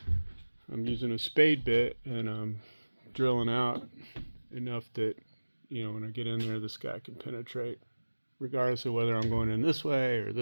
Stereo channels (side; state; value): both; inverted; correlation -1.00